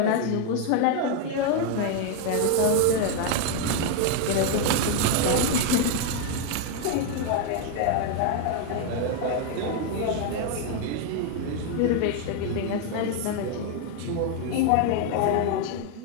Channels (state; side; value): different; both; correlation 0.01